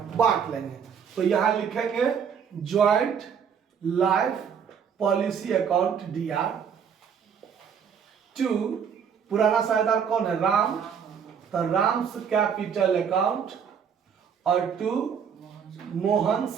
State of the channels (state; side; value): quieter; left; 7.3 dB